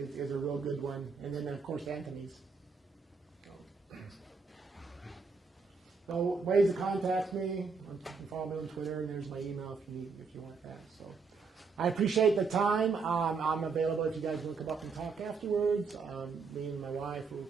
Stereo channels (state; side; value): quieter; left; 4.9 dB